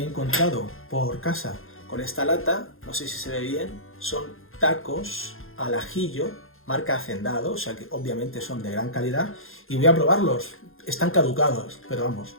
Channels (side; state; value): right; late; 0.60 ms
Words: he encontrado por casa con esta lata, no sé si se ve bien, son tacos al ajillo, marca Hacendado, o sea que obviamente son de gran calidad, y voy a probarlos. Están caducados, pero vamos,